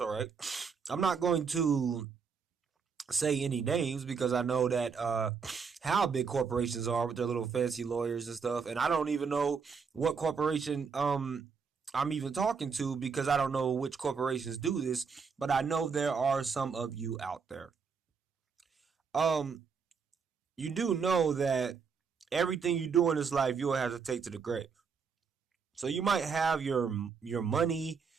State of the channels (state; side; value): quieter; left; 5.8 dB